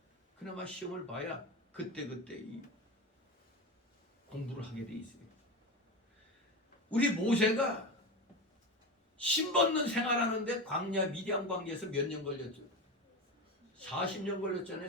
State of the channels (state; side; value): normal; both; correlation 0.22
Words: 그나마 시험을 봐야 그때그때 이 공부를 하게 돼 있어요. 우리 모세가 신벗는 생활하는데 광야 미디안 광야에서 몇 년 걸렸죠? 40년 걸렸잖아요.